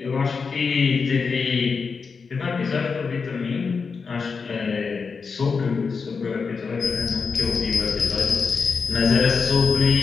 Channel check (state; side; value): quieter; right; 5.2 dB